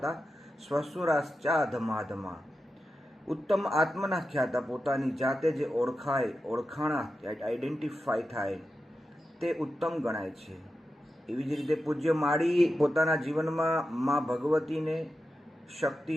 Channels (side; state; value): both; normal; correlation 0.90